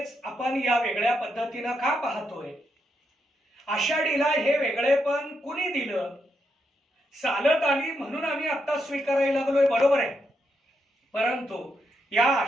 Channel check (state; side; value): normal; both; correlation 0.81